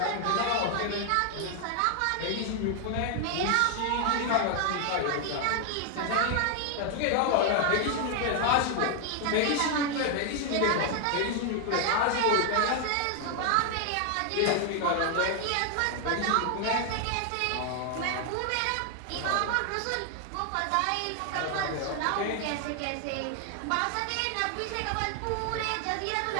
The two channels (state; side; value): different; both; correlation 0.00